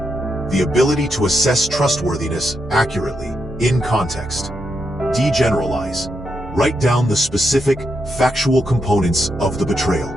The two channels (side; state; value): both; normal; correlation 0.83